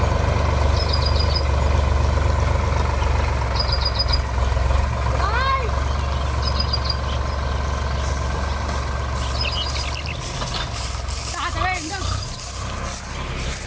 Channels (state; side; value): identical; both; correlation 1.00